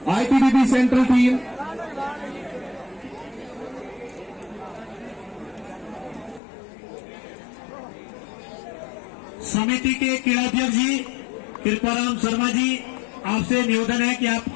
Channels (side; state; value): right; drops out; at 6.4 s